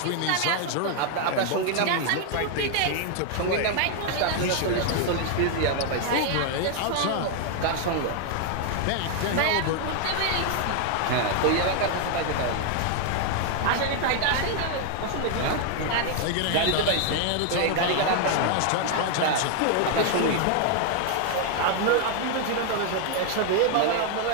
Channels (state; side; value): different; both; correlation 0.00